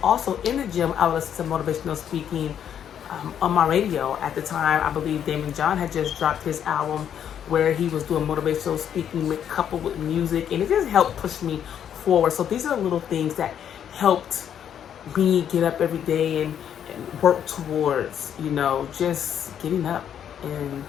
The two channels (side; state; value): right; quieter; 9.2 dB